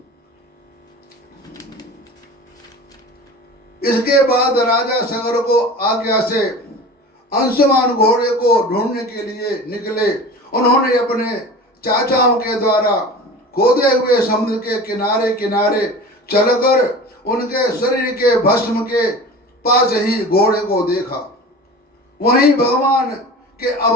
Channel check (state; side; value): normal; both; correlation 0.36